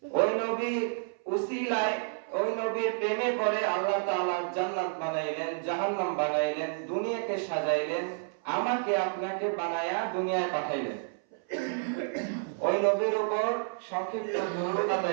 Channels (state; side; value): silent; left; 58 dB below the other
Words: ওই নবী উসিলায় ওই নবীর প্রেমে পড়ে আল্লাহ তাআলা জান্নাত বানাইলেন, জাহান্নাম বানাইলেন, দুনিয়াকে সাজাইলেন, আমাকে আপনাকে বানায়া দুনিয়ায় পাঠাইলেন। ওই নবীর উপর সংক্ষিপ্ত দরুদ